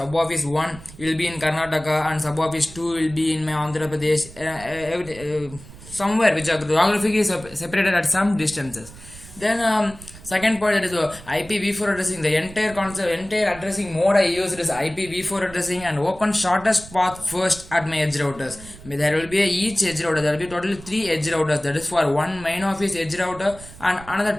office one will be in Karnataka, and sub office two will be in my Andhra Pradesh. Somewhere which are geographically separated at some distances. Then second point, that is IPv4 addressing. The entire concept, entire addressing mode I used is IPv4 addressing and open shortest path first at my edge routers. There will be each edge router. There will be totally three edge routers. That is for one main office edge router and another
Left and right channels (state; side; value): noise; right; rumble, 18 dB below the sound